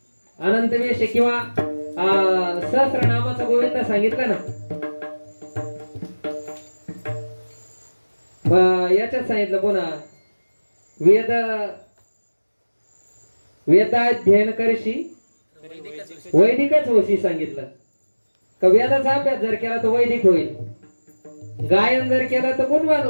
अनंत वेश किंवा सहस्रनामाचा गोविंद सांगितलं ना. याच्यात सांगितलं पुन्हा वेद वेदाध्ययन करशी वैदिकच होशी सांगितलं. का वेदाचा अभ्यास जर केला तर वैदिक होईल, गायन जर केलं तर गुणवान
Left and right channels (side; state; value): both; inverted; correlation -1.00